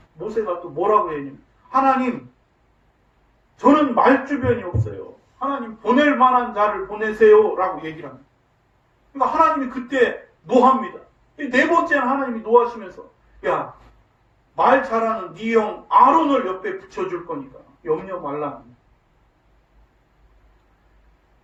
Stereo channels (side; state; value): both; identical; correlation 1.00